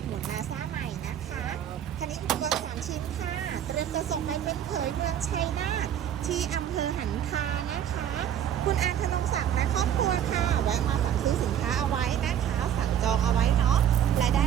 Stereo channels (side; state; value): left; quieter; 9.8 dB